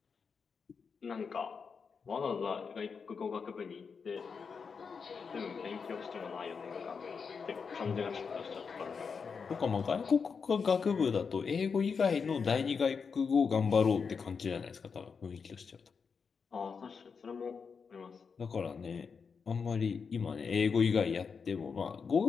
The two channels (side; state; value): right; quieter; 5.7 dB